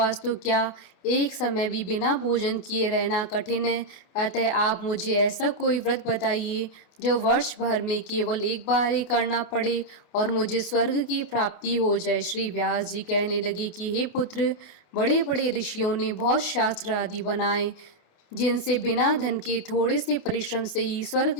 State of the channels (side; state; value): right; late; 28 ms